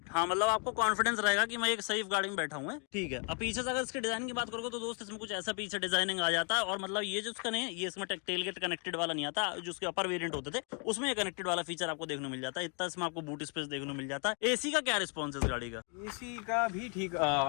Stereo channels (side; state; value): right; quieter; 38.4 dB